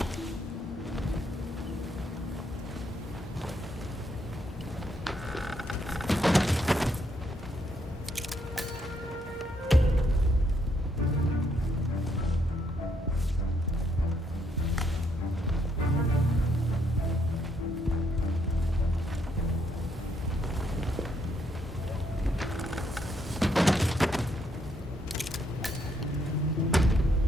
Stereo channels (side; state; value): both; normal; correlation 0.73